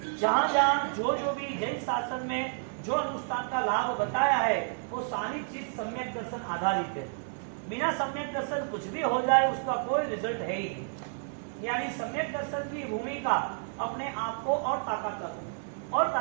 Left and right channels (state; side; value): silent; left; digital silence